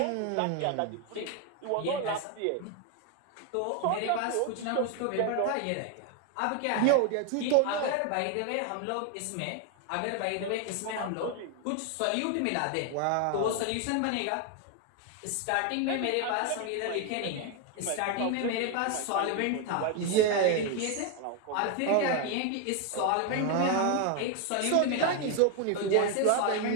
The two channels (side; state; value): both; different; correlation 0.01